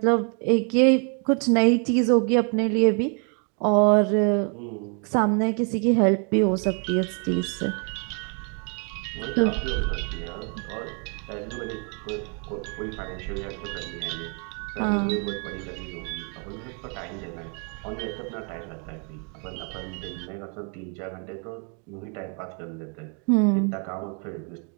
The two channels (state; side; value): quieter; left; 39.2 dB